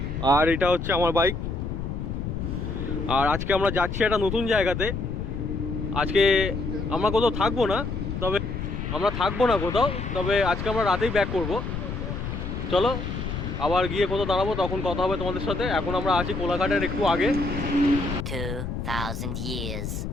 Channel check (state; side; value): noise; left; rumble, 4 dB below the sound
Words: আর এটা হচ্ছে আমার বাইক। আর আজকে আমরা যাচ্ছি একটা নতুন জায়গাতে। আজকে আমরা কোথাও থাকবো না, তবে আজকে আমরা রাতেই ব্যাক করব। চলো আবার গিয়ে কোথাও দাঁড়াবো, তখন কথা হবে তোমাদের সাথে। এখন আমরা আছি কোলাঘাটের একটু আগে। 2000 years